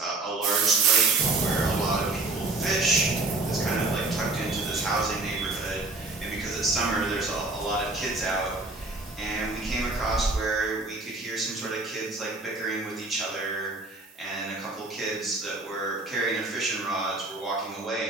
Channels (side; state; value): left; quieter; 3.2 dB